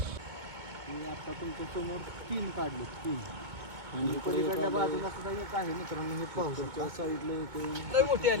मी आता तुमच्या समोर 3 काढले 3. आणि पलीकडल्या बाजूला सुद्धा एक आहे मित्रांनो. हे पाहू शकता साईडला मोठी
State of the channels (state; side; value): late; left; 2.2 ms